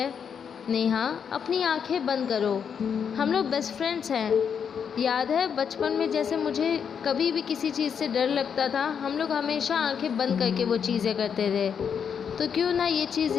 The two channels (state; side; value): quieter; right; 7.2 dB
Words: नेहा अपनी आंखें बंद करो, हम लोग बेस्ट फ्रेंड्स हैं। याद है बचपन में जैसे मुझे कभी भी किसी चीज़ से डर लगता था, हम लोग हमेशा आंखें बंद करके वो चीज़ें करते थे, तो क्यों ना ये चीज़